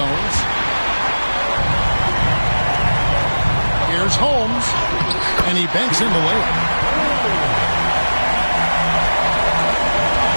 Here's Holmes. And he banks in the layup.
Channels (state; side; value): inverted; both; correlation -1.00